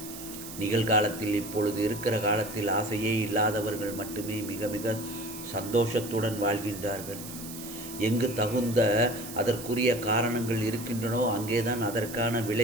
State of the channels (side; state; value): right; noise; hiss, 12 dB below the sound